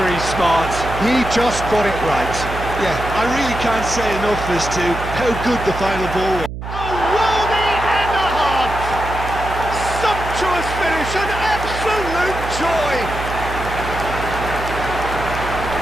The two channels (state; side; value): noise; right; hum, 8 dB below the sound